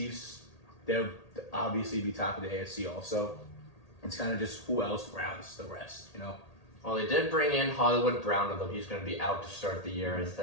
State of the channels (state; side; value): late; right; 1.8 ms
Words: they'll obviously be top of the AFC also. It's kind of just who else rounds the rest, Well, they did bring in Hollywood Brown, although he's going to be out to start the year, I